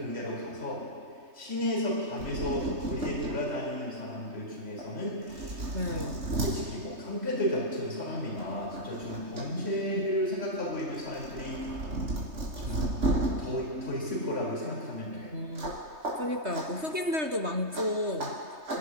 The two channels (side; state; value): left; late; 3.2 ms